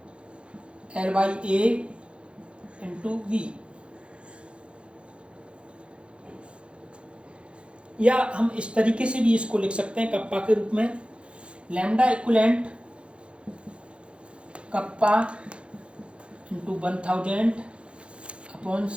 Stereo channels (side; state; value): left; late; 0.058 ms